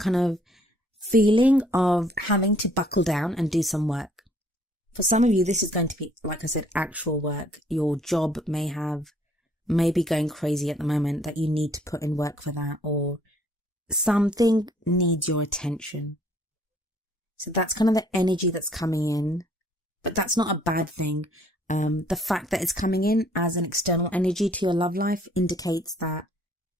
of feeling of having to buckle down and do some work. For some of you, this is going to be, like I said, actual work. Your job may be going crazy at the moment that you need to put in work for that, or something needs your attention. So that's kind of the energy that's coming in, but that's not a bad thing. The fact that it's coming in as an external energy to your love life indicates that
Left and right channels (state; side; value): normal; both; correlation 0.62